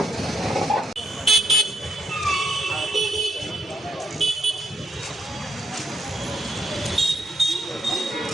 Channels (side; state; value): both; normal; correlation 0.76